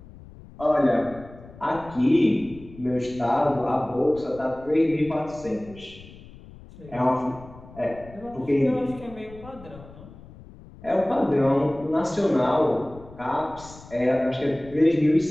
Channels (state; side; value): noise; left; rumble, 19 dB below the sound